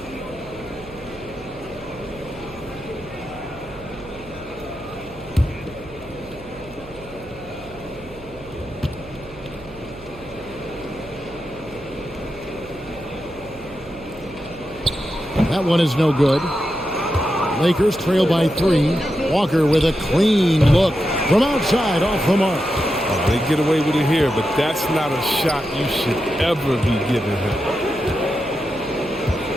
That one is no good. Lakers trail by 3. Walker with a clean look from outside off the mark. They get away with it here, but that's not a shot you should ever be giving him.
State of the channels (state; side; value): noise; right; hum, 20 dB below the sound